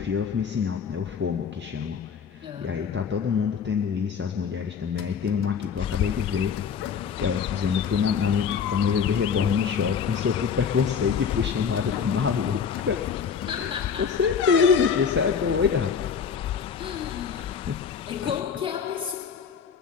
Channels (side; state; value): right; quieter; 6.8 dB